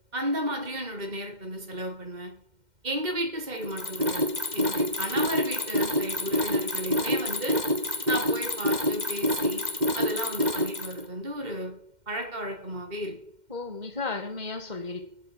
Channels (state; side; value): late; left; 2.1 ms